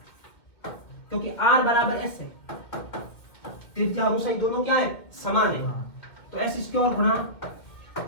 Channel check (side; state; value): right; late; 2.3 ms